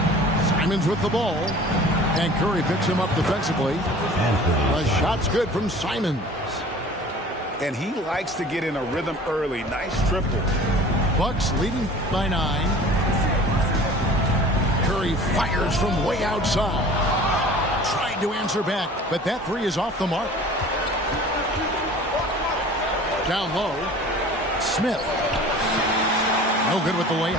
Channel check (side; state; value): both; normal; correlation 0.44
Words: Simons with the ball. And Curry picks him up defensively. The shot's good from Simons. And he likes to get in a rhythm early. Nice triple. Bucks leading by 9. Curry fires from way outside. Tried to answer back, but that 3 is off the mark. Down low. Smith. No good with the